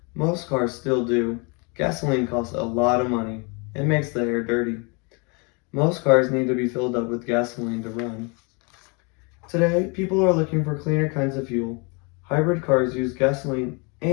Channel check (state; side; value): quieter; right; 31.7 dB